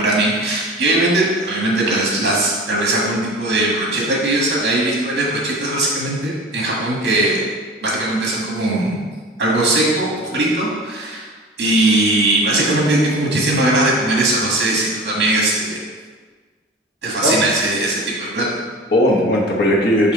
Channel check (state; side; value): normal; both; correlation 0.36